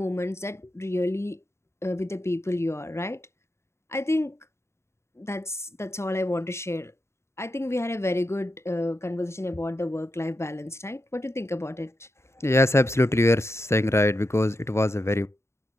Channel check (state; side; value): late; right; 0.13 ms